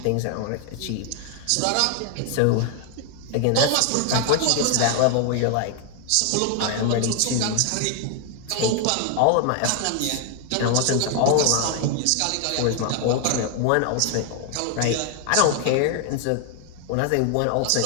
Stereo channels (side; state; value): both; different; correlation 0.00